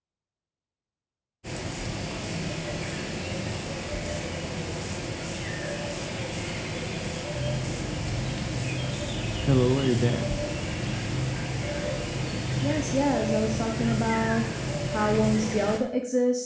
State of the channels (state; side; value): identical; both; correlation 1.00